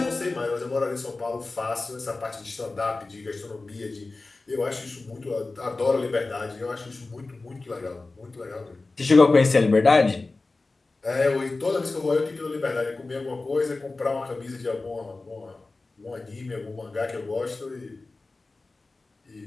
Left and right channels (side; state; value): right; quieter; 3.4 dB